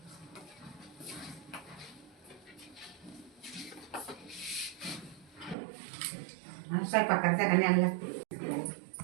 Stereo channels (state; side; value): drops out; left; at 5.6 s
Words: स्वयंपाक करता का न्यायला